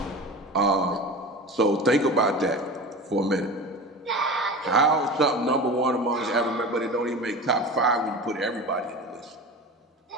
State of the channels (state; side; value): normal; both; correlation 0.32